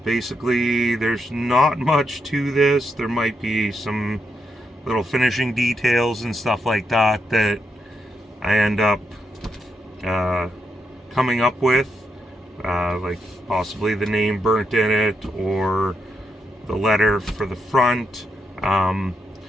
basically there's not much to this. There might be some little finishing details and stuff like that that I end up coming up with, like possibly the name burnt in it or the letter for the front.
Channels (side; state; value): both; normal; correlation 0.82